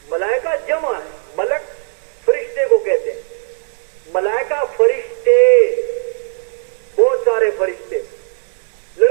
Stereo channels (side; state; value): left; silent; 67 dB below the other